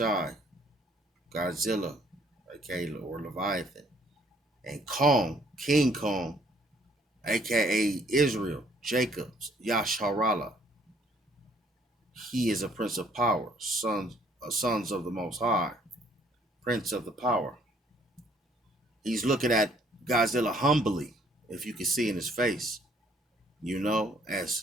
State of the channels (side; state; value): both; normal; correlation 0.63